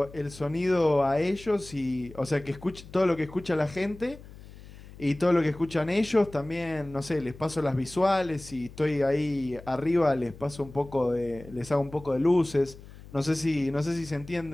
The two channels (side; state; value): left; noise; hum, 18 dB below the sound